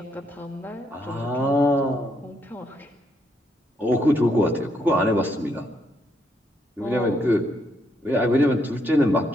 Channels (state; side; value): normal; both; correlation 0.75